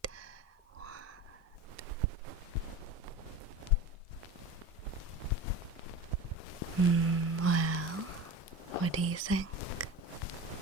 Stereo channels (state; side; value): normal; both; correlation 0.32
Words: 2, 1. Well, what do you think?